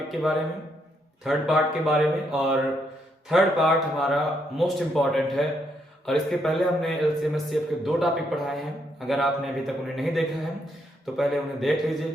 के बारे में, थर्ड पार्ट के बारे में। और थर्ड पार्ट हमारा मोस्ट इम्पॉर्टेंट है और इसके पहले हमने एलसीएम एचसीएफ के दो टॉपिक पढ़ाए हैं। अगर आपने अभी तक उन्हें नहीं देखा है तो पहले उन्हें देख लीजिए,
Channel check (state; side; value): normal; both; correlation 0.76